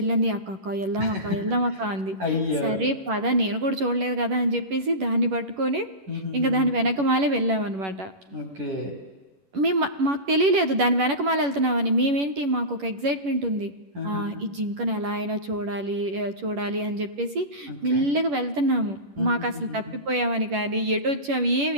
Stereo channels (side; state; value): left; late; 11 ms